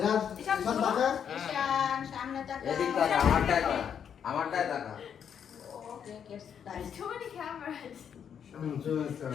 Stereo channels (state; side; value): quieter; right; 8.1 dB